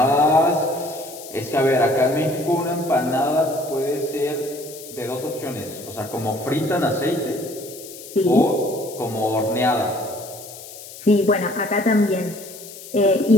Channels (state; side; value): noise; left; hiss, 15 dB below the sound